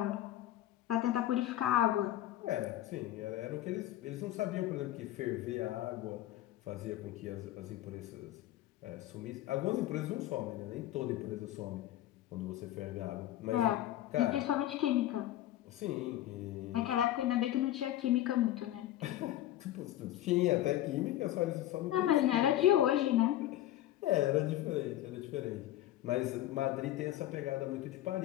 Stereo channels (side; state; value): right; quieter; 13.7 dB